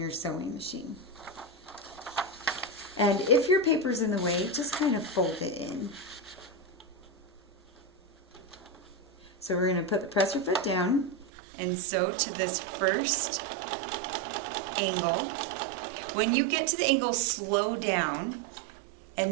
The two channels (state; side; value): drops out; left; at 11.2 s